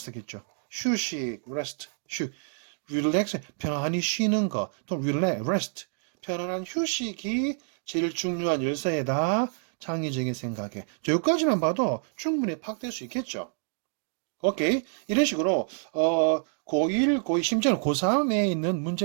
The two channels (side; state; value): left; silent; 59 dB below the other